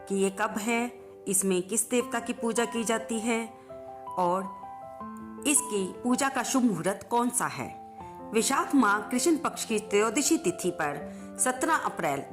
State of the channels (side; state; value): both; identical; correlation 1.00